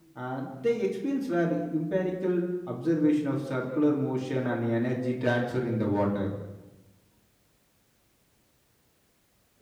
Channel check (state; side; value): identical; both; correlation 1.00